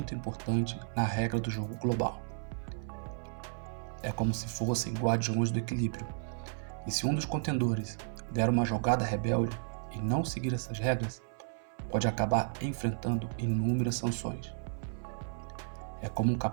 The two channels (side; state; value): left; silent; 56 dB below the other